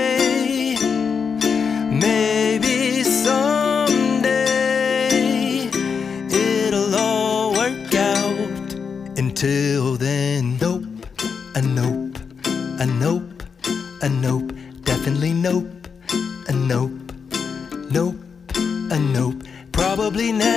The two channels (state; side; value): quieter; right; 6.0 dB